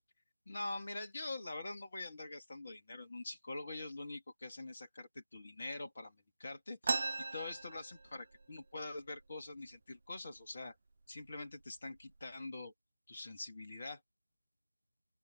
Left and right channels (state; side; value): inverted; both; correlation -0.91